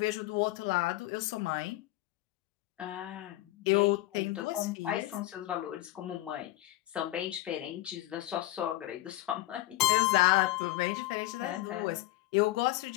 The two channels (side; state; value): right; quieter; 16.9 dB